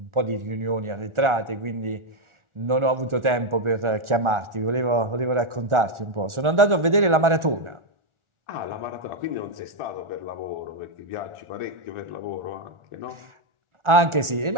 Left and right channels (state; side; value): late; left; 1.4 ms